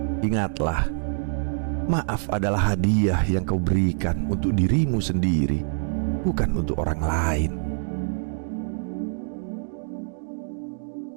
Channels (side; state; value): left; silent; digital silence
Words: Ingatlah, maaf adalah hadiah yang kau berikan untuk dirimu sendiri, bukan untuk orang lain.